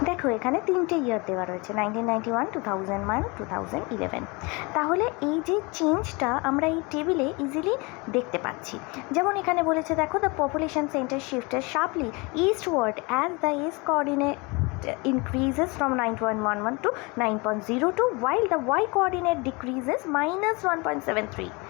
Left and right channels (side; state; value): right; quieter; 27.5 dB